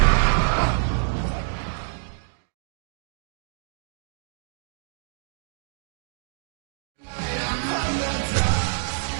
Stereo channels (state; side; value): silent; left; digital silence